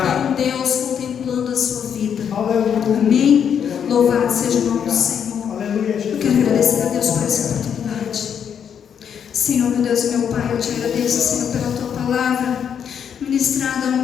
um Deus contemplando a sua vida. Amém? Louvado seja o nome do Senhor. Eu quero agradecer a Deus por essa oportunidade. Senhor, meu Deus e meu Pai, eu te agradeço, Senhor, pela tua palavra ministrada ao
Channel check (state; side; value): quieter; right; 8.0 dB